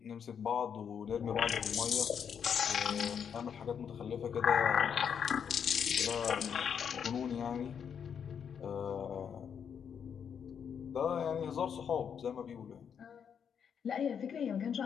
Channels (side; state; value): right; quieter; 7.6 dB